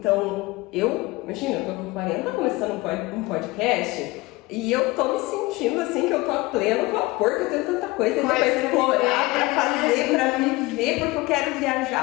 imagina, eu tô com 40 começando um podcast e eu tô me sentindo assim que eu tô a pleno vapor, que eu tenho tanta coisa pra explorar, pra fazer, pra viver, porque eu quero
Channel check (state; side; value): quieter; right; 21.5 dB